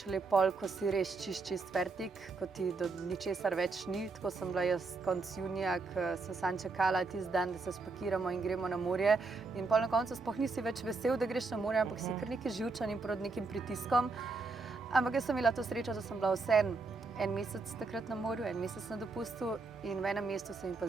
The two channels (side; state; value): left; quieter; 3.9 dB